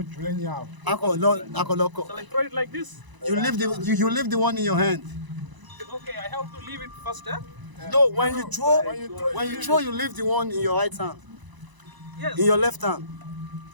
Akoloko. So I throw it like this. You leave the one in your hand. Okay, I have to leave it first. No, when you throw, you leave the one in your right hand. Yes. In your left hand.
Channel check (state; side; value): late; left; 1.0 ms